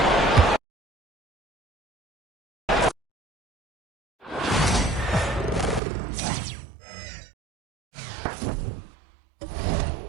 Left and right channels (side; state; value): left; drops out; at 5.8 s